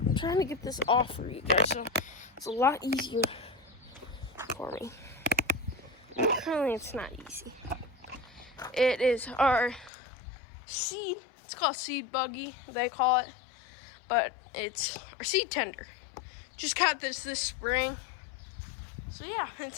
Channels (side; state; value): right; drops out; at 9.9 s